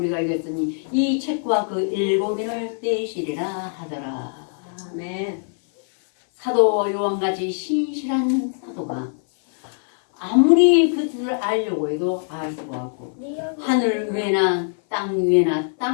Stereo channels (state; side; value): silent; right; 58 dB below the other